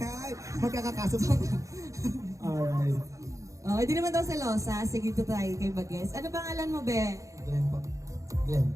Ay, magkakakaso pa. Alright. Oh, hindi naman daw selosa. Sige, dito tayo kay Bages. Ano pangalan mo, be? Glenn po. Glenn.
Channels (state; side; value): late; left; 0.15 ms